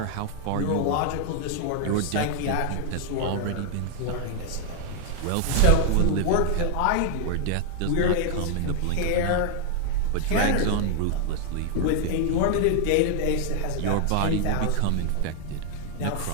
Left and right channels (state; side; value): different; both; correlation 0.00